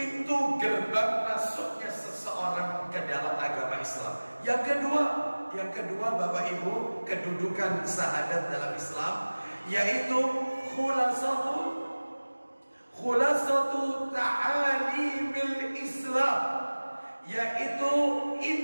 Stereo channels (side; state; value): both; inverted; correlation -1.00